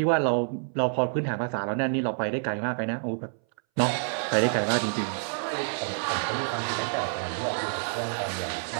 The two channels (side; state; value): left; silent; 59 dB below the other